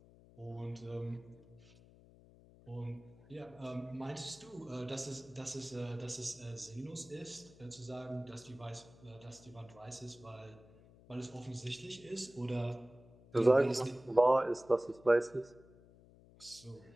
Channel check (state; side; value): noise; left; hum, 23 dB below the sound